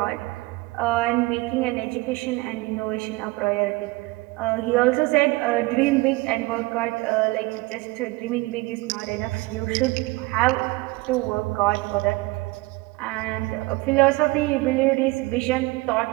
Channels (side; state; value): left; quieter; 22.5 dB